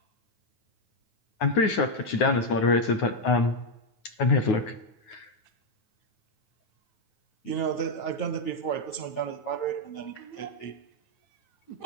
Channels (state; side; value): late; right; 9.5 ms